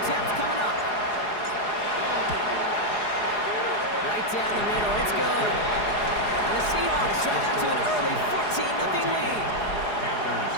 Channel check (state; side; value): late; right; 4.8 ms